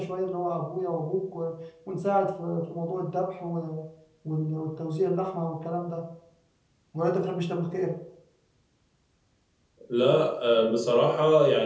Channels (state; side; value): identical; both; correlation 1.00